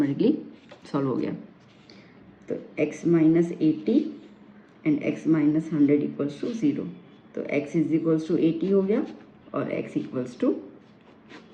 सॉल्व हो गया। तो x minus 80 and x minus 100 equals to 0, तो x इज इक्वल्स टू 80 हो गया और x इक्वल्स टू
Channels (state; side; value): identical; both; correlation 1.00